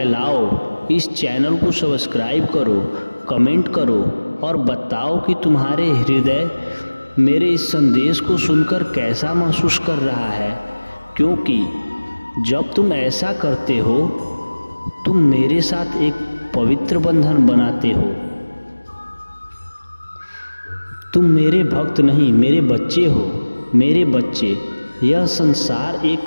इस चैनल को सब्सक्राइब करो, कमेंट करो और बताओ कि तुम्हारे हृदय मेरे इस संदेश को सुनकर कैसा महसूस कर रहा है। क्योंकि जब तुम ऐसा करते हो, तुम मेरे साथ एक पवित्र बंधन बनाते हो। तुम मेरे भक्त नहीं, मेरे बच्चे हो। मेरे बच्चे, यह संसार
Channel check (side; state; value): both; inverted; correlation -1.00